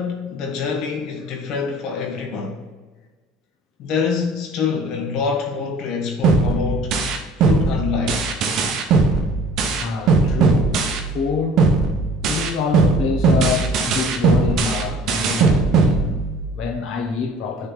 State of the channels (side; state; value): both; normal; correlation 0.49